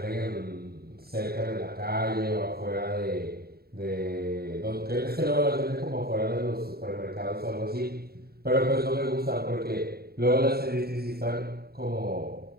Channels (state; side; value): late; left; 0.45 ms